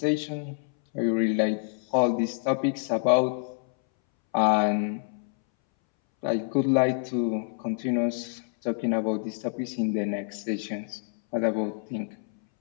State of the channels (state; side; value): silent; right; 60 dB below the other